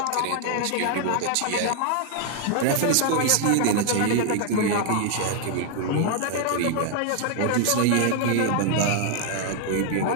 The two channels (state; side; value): different; both; correlation 0.00